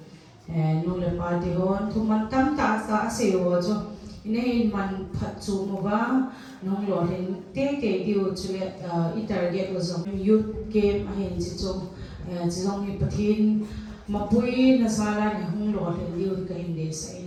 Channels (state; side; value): identical; both; correlation 1.00